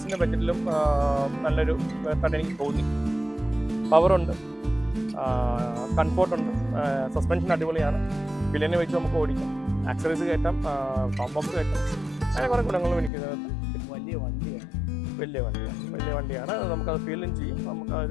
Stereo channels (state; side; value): drops out; right; at 13.1 s